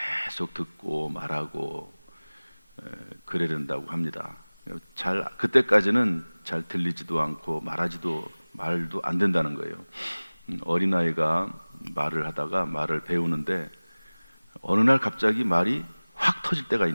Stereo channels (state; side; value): inverted; both; correlation -1.00